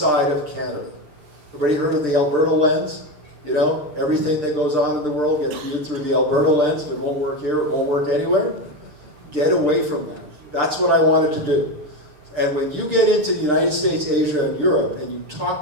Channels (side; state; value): left; late; 6.7 ms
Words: of Canada. Everybody heard of the Alberta lens? You know, everything that goes on in the world gets viewed through the Alberta lens. If it won't work here, it won't work anywhere. Get away from that. That's what I wanted to do. And when you get into the United States, Asia, and Europe, and you